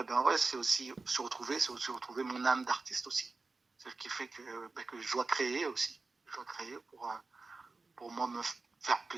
c'est aussi se retrouver mon âme d'artiste aussi. C'est ce qui fait que je dois créer aussi. Je dois créer pour moi me faire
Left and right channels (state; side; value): quieter; left; 3.8 dB